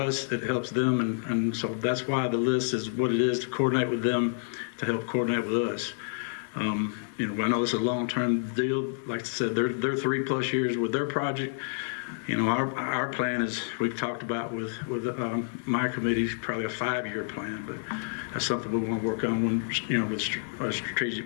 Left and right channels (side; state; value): right; silent; 59 dB below the other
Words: It helps them, and so that's why the list is what it is, to coordinate with them, to help coordinate with us. You know, I know it's a long-term deal. Like I said, they're 3+ years with their project. You know, our plan is, we've talked about with my committee, probably a 5-year plan, but that's something we want to work on when, you know, with